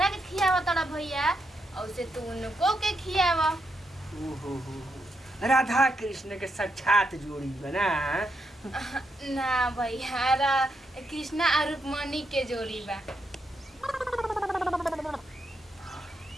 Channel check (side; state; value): both; normal; correlation 0.82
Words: के खियावा तड़ा भैया औसे तू उनको के खियावा। राधा कृष्ण के साक्षात जोड़ी बना ना भैया कृष्णा और रुक्मणी के जोड़ी बा।